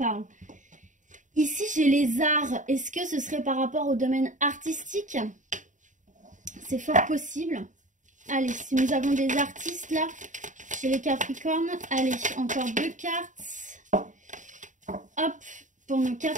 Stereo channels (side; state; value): left; late; 0.36 ms